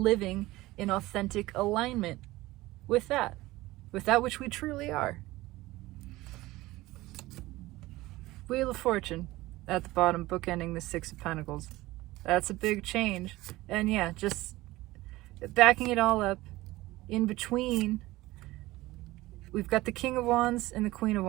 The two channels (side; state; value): left; quieter; 18.6 dB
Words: in authentic alignment with that which we truly are. Wheel of Fortune at the bottom, bookending the Six of Pentacles. That's a big change. And yeah, just backing it all up, in between, we've got the King of Wands and the Queen of